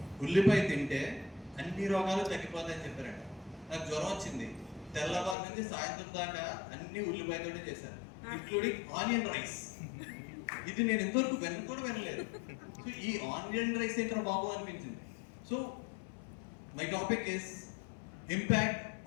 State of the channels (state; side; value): drops out; right; at 5.4 s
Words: ఉల్లిపాయ తింటే అన్ని రోగాలు తగ్గిపోతాయని చెప్పారంట. నాకు జ్వరం వచ్చింది, తెల్లవారు నుంచి సాయంత్రం దాకా అన్ని ఉల్లిపాయతోనే చేశాను, ఇంక్లూడింగ్ ఆనియన్ రైస్. ఇది నేను ఎంతవరకు కూడా వినలేదు. సో ఈ ఆనియన్ రైస్ ఏంటో బాబు అనిపించింది. So my topic is impact